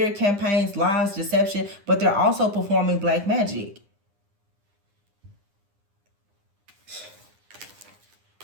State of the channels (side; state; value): left; late; 9.9 ms